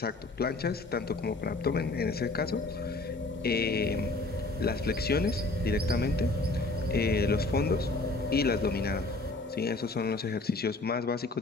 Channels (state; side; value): quieter; right; 3.1 dB